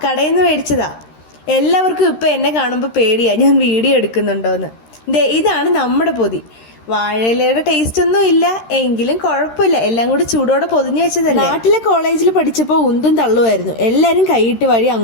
കടയിൽ നിന്ന് മേടിച്ചതാ. എല്ലാവർക്കും ഇപ്പം എന്നെ കാണുമ്പോൾ പേടിയാ ഞാൻ വീഡിയോ എടുക്കുന്നുണ്ടോയെന്ന്. ദേ ഇതാണ് നമ്മുടെ പൊതി. വാഴയിലയുടെ ടേസ്റ്റ് ഒന്നും ഇല്ല, എങ്കിലും കുഴപ്പമില്ല. എല്ലാം കൂടി ചൂടോടെ പൊതിഞ്ഞു വെച്ചതല്ലേ. നാട്ടിലെ കോളേജിൽ പഠിച്ചപ്പോൾ ഉന്തും തള്ളുമായിരുന്നു. എല്ലാവരും കൈയിട്ട് വഴി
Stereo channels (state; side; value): late; right; 13 ms